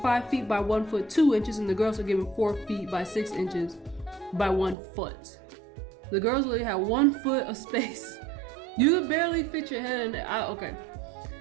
feet by 1 foot 2 inches, and the girls were given 4 feet by 6 inches by 1 foot. The girls only had 1 foot of space. You could barely fit your head in there. Okay.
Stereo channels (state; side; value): drops out; left; at 4.8 s